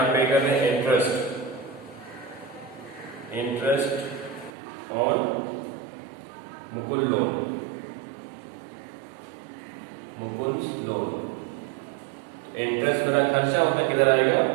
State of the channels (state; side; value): drops out; left; at 4.5 s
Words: पे कर रहे हैं? Interest on Mukul loan, Mukul loan. Interest मेरा खर्चा होता है, किधर आएगा?